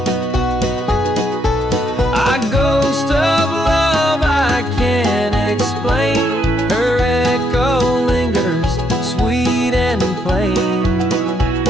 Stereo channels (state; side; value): normal; both; correlation 0.74